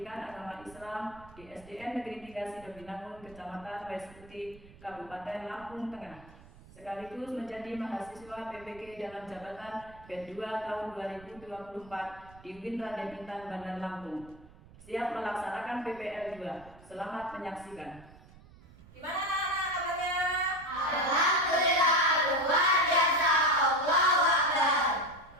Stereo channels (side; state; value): right; noise; rumble, 22 dB below the sound